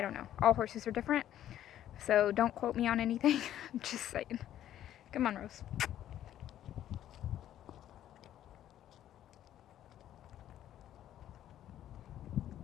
don't know. All horses are different, so don't quote me on anything. I'm just saying. Come on, Rose.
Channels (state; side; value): quieter; right; 11.7 dB